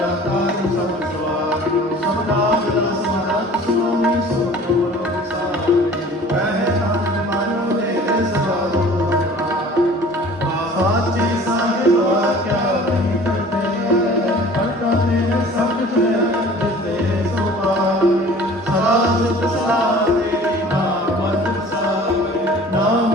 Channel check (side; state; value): both; normal; correlation 0.47